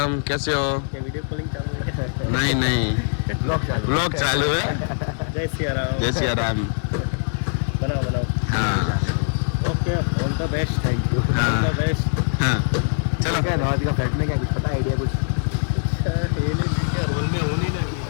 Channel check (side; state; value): right; silent; digital silence